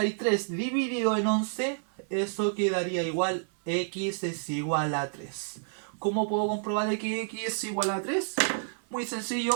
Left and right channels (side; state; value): left; silent; 58 dB below the other